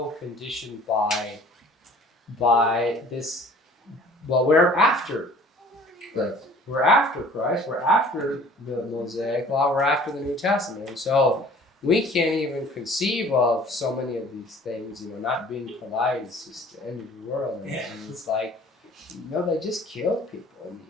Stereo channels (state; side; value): normal; both; correlation 0.50